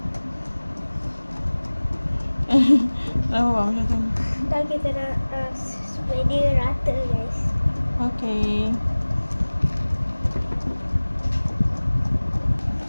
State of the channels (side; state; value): both; inverted; correlation -1.00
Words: Oh, macam tu. Dan kita nak supaya dia rata guys. Okay.